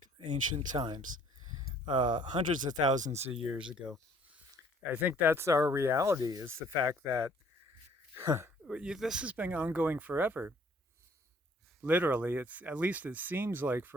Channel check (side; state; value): both; normal; correlation 0.59